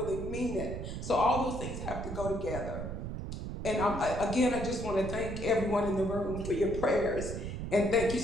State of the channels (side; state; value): right; noise; rumble, 6 dB below the sound